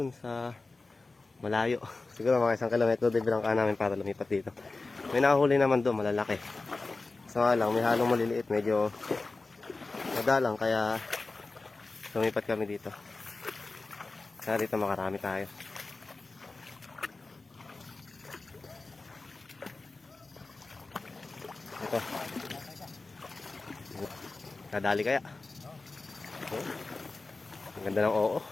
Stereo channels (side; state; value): right; quieter; 3.5 dB